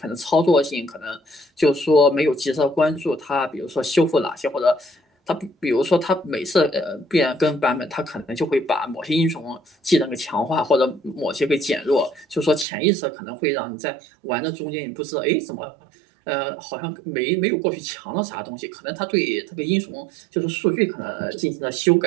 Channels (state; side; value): drops out; left; at 12.7 s